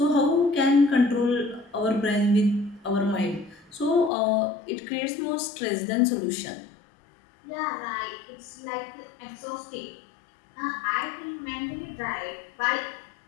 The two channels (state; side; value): drops out; right; at 4.1 s